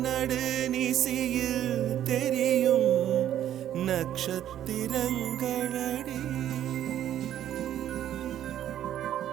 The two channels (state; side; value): quieter; left; 11.3 dB